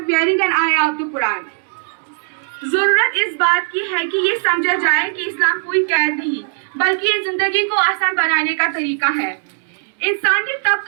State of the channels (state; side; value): silent; left; 67 dB below the other